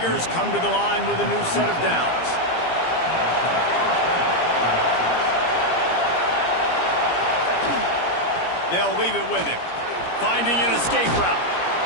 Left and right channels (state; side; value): late; right; 17 ms